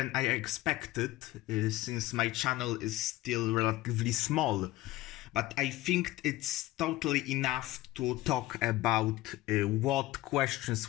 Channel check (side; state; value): right; quieter; 17.1 dB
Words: I expected, since my channel is still relatively small. But I think it's totally enough to talk about what questions